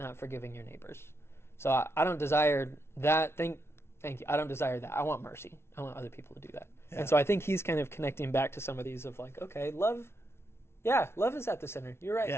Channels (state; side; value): late; right; 0.12 ms